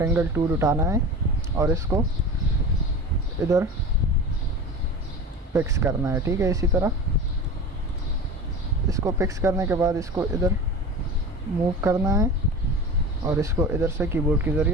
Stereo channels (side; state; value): both; normal; correlation 0.33